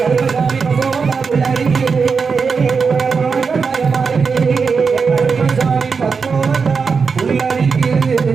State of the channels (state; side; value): quieter; left; 5.3 dB